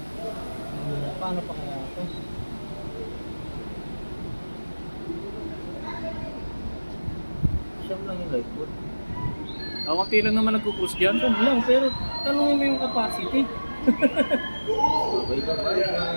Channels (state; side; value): inverted; both; correlation -1.00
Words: Paano pa kaya ito? Siyam lang yung lifeboat. Konti lang naman nagkukrus dyan. Siyam lang, pero tanongin mo yung capacity. Okay ka ba?